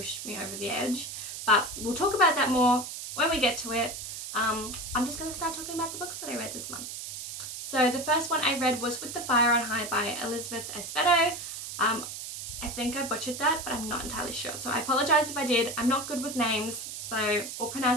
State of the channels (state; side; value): noise; right; hiss, 8 dB below the sound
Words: me over the edge. But we'll talk about that more when we get to it. I'm just going to start talking about the books that I read this month. So the first one I read was With the Fire on High by Elizabeth Espedo. I think I butchered that, but I'm not entirely sure, so I apologize if I did. I'm not good with names or